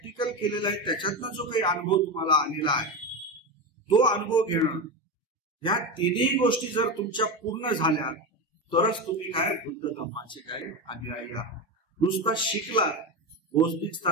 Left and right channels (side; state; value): both; normal; correlation 0.18